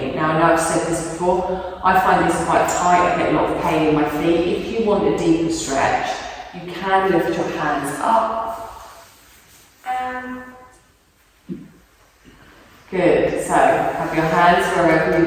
Now I know I've said this before, I find this quite tight, I get a lot of pain in my feet. If you want a deeper stretch, you can lift your hands up. Good, so have your hands wherever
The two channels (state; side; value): identical; both; correlation 1.00